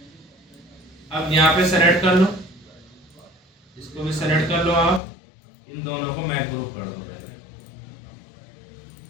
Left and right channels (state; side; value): drops out; right; at 5.0 s